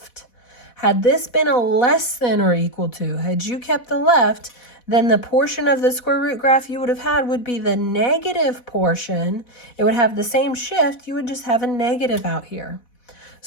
had this been a less than or equal to, had you kept the left, then the portion of the square root graph you would have had would be the negative portion. It would have the same shift. You would just have a negative out here.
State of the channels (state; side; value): late; right; 4.1 ms